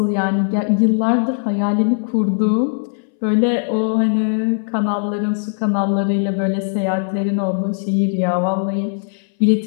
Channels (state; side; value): silent; right; 63 dB below the other